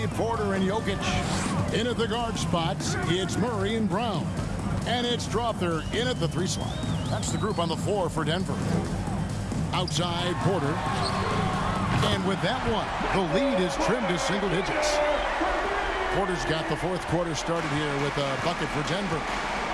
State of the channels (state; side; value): identical; both; correlation 1.00